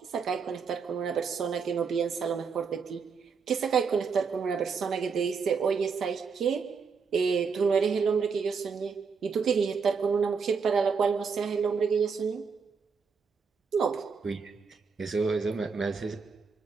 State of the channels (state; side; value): quieter; left; 5.5 dB